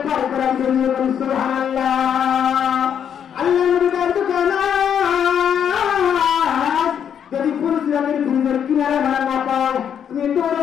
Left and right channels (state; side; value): quieter; right; 8.5 dB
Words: পার করার জন্য সুবহানাল্লাহ। আল্লাহ নবী জানতে পারে না। যদি ফুলসিরাতের ব্রিজের কিনারে ভাড়া না পাও, তুমি